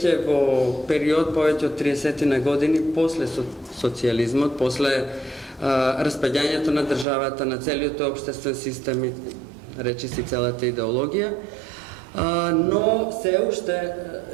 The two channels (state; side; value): drops out; left; at 7.1 s